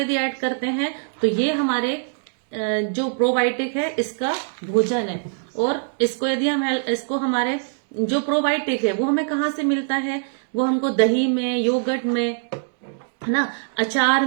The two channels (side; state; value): left; silent; digital silence